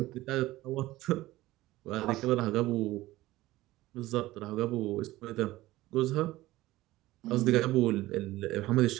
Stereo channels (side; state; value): left; quieter; 17.4 dB